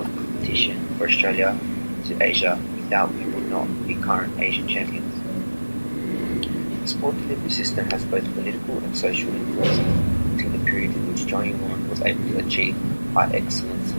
competition for Australia to Asia, without we would not be current Asian champions. The sport delivery system has both political and social influence until the period in which Johnny Warren was able to achieve high excellence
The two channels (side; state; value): both; inverted; correlation -1.00